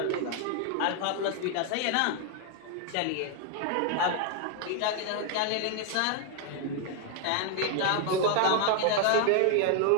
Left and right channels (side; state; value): both; different; correlation 0.00